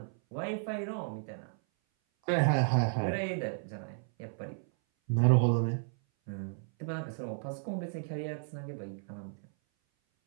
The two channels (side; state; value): left; silent; 56 dB below the other